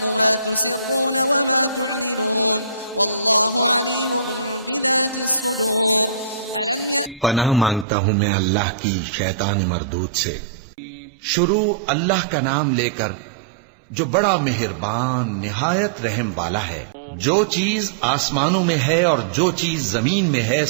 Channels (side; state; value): left; drops out; at 7.9 s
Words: मा तुसिर्रून व मा तुअलिनून वल्लाहु अलीमुन बिज़ातिस सुदूर। पनाह मांगता हूँ मैं अल्लाह की शैतान मरदूद से। शुरू अल्लाह का नाम लेकर जो बड़ा मेहरबान निहायत रहम वाला है। जो चीज आसमानों में है और जो चीज जमीन में है